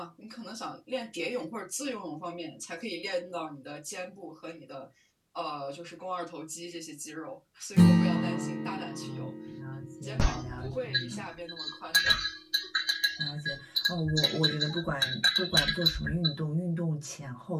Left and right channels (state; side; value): identical; both; correlation 1.00